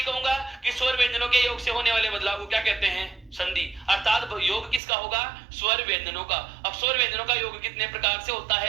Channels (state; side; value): drops out; left; at 4.8 s